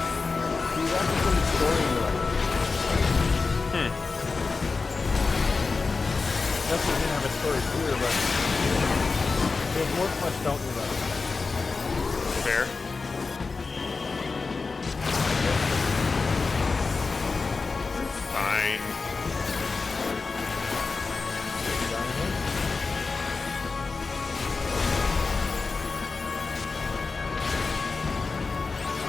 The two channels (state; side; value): quieter; right; 4.3 dB